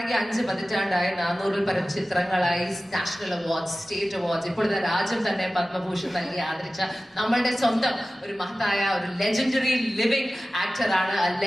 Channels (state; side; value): normal; both; correlation 0.96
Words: 5 പതിറ്റാണ്ടായി, 400-ൽ പരം ചിത്രങ്ങളായി, നാഷണൽ അവാർഡ്സ്, സ്റ്റേറ്റ് അവാർഡ്സ്, ഇപ്പോഴത്തെ രാജ്യം തന്നെ പത്മഭൂഷൺ നൽകി ആദരിച്ച നമ്മളുടെ സ്വന്തം ഒരു മഹത്തായ ഒരു ലെജൻഡറി ലിവിംഗ് ആക്ടറാണ്,